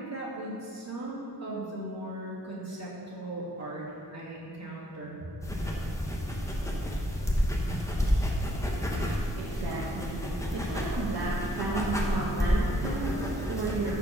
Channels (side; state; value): both; normal; correlation 0.69